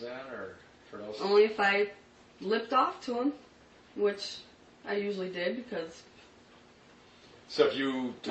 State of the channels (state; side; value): identical; both; correlation 1.00